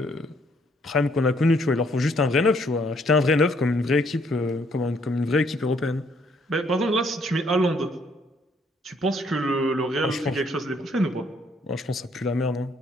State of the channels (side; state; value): both; normal; correlation 0.67